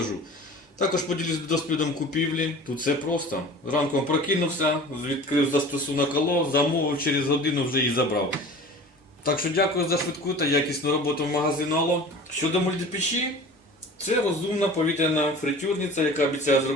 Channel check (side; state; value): both; normal; correlation 0.40